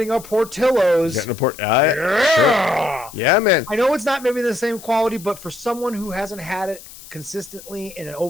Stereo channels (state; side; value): noise; left; hiss, 18 dB below the sound